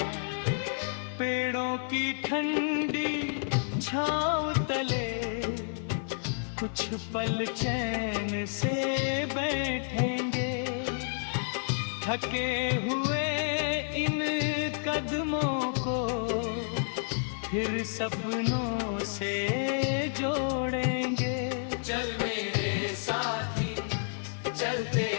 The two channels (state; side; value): silent; right; digital silence